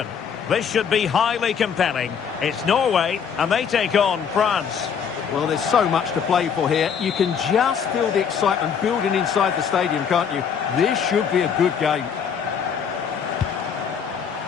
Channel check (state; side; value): quieter; right; 7.2 dB